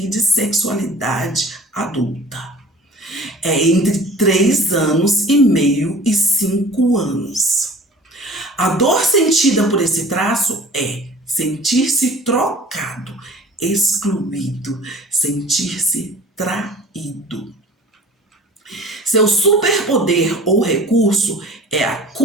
de sexualidade adulta. É entre 3 anos e meio e 5 anos. A dor sentida por esse traço é sentir-se trocado, excluído, sentir-se traído. Seu superpoder ou recurso é a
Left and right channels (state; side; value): normal; both; correlation 0.44